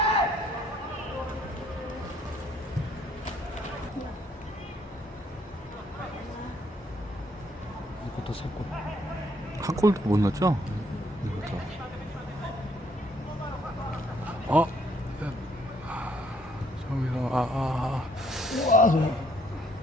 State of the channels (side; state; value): both; normal; correlation 0.67